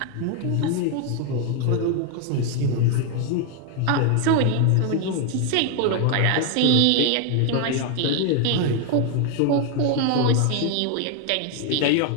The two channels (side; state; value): both; different; correlation 0.00